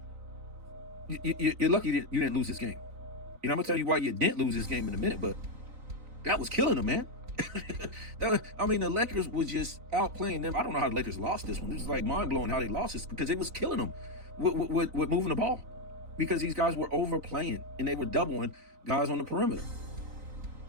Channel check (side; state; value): left; late; 3.9 ms